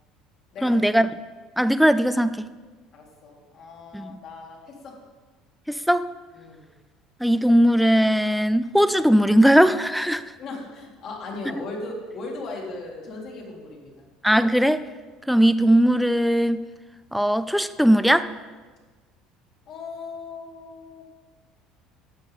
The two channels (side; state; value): both; normal; correlation 0.97